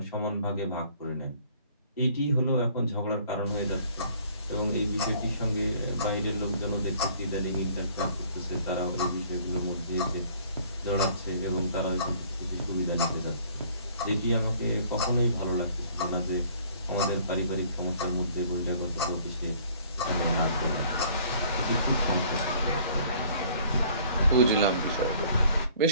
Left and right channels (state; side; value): inverted; both; correlation -0.56